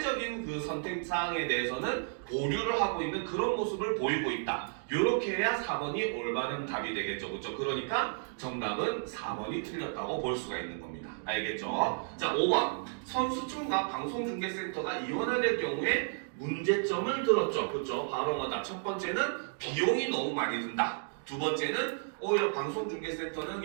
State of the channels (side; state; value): left; silent; digital silence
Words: 그 선택 사항에 대해서는 보류를 하고 있는 그런 모습을 보이고 있다. 이렇게 해야 4번이 올바른 답이 되겠죠. 그렇죠? 그러니까 정답은 4번이 틀렸다고 볼 수가 있는 겁니다. 알겠죠? 자, 5번. 선수촌과 방송중계센터가 이원화될 경우에 문제점을 들었죠. 그렇죠? 바로 뭐다? 첫 번째는 비용이 너무 많이 든다. 두 번째는 오히려 방송중계센터는